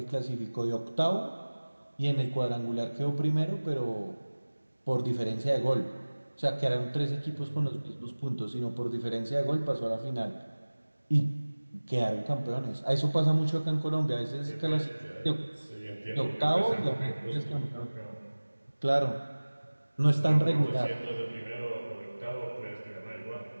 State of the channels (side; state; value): both; inverted; correlation -1.00